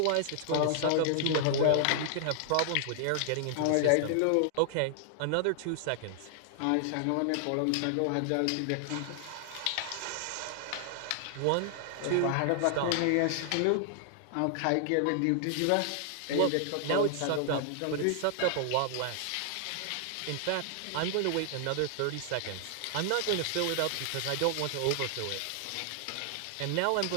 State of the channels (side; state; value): both; different; correlation -0.01